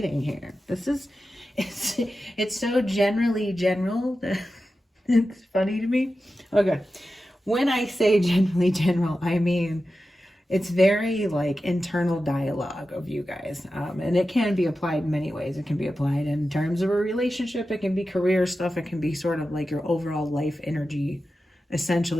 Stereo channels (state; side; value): normal; both; correlation 0.92